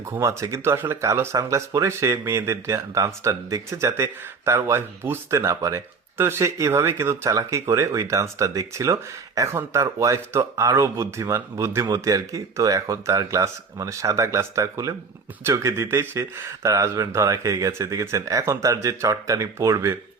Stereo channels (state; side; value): quieter; left; 4.9 dB